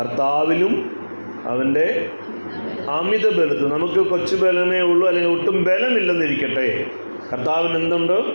അവൻ്റെ അമിത ബലത്തിൽ. നമുക്ക് കൊച്ചു ബലമേ ഉള്ളൂ, അല്ലെങ്കിൽ ഒട്ടും ബലമില്ലെന്നിരിക്കട്ടെ, കർത്താവിന് എന്തുണ്ട്?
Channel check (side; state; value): both; inverted; correlation -1.00